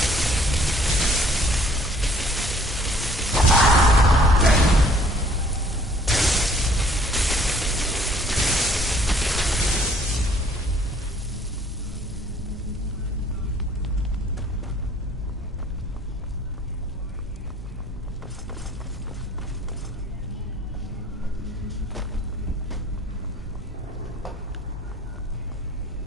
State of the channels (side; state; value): both; normal; correlation 0.57